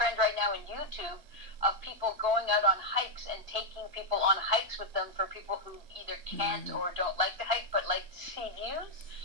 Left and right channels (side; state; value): left; late; 2.4 ms